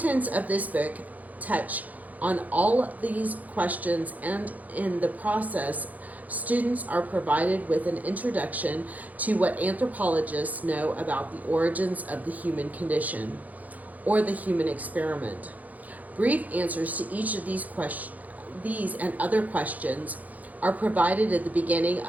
of this book touch on all these questions, and in the process, students are provided with an introduction to what anthropologists know about the origins of the human condition, or the human experiment. Brief answers to each of these and other questions are provided at the beginning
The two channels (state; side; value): late; left; 0.078 ms